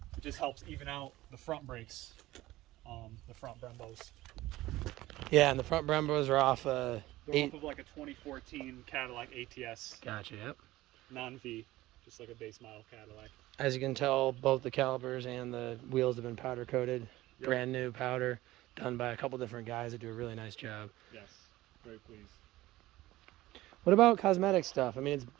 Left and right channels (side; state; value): left; quieter; 17.2 dB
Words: It just helps even out the front brakes, the front Brembos. Yeah, and the front Brembos are off. They're off of like a 2014 Cadillac ATS. Gotcha. Yep. Non-V, just like a base model Cadillac. As you can tell, both the calipers and the wheels have been powder coated. Yep. Brand new powder, done by a couple different guys that do a really nice job. Yes, very pleased. What about cosmetic stuff? I mean, it's